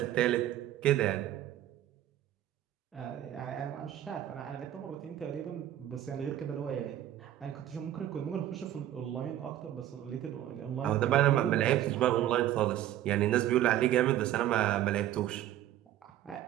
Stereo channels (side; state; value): left; quieter; 12.6 dB